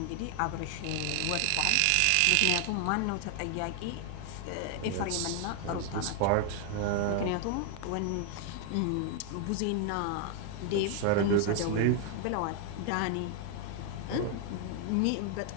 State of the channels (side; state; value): both; different; correlation 0.00